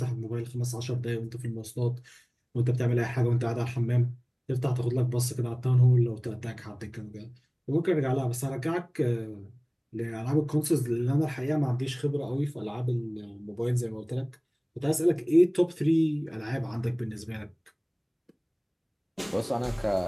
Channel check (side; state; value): both; identical; correlation 1.00